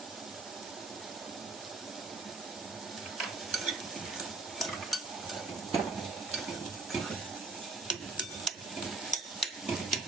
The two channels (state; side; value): quieter; left; 3.6 dB